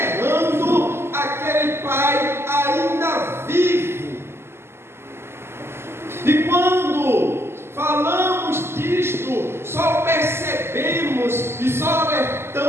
aquele pai ainda vivo. E quando falamos disto, só percebemos e só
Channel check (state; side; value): late; left; 0.12 ms